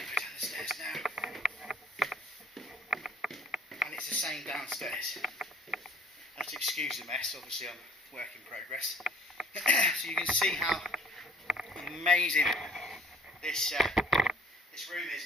to go down the stairs now, and it's the same downstairs. Have to excuse the mess, obviously I'm work in progress. So you can see how amazing this room is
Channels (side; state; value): both; normal; correlation 0.54